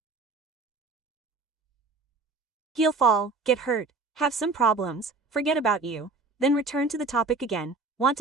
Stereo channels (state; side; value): quieter; left; 3.8 dB